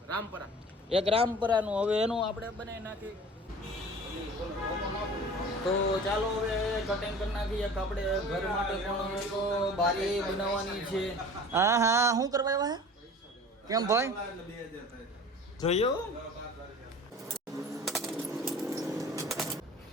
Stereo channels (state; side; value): normal; both; correlation 0.42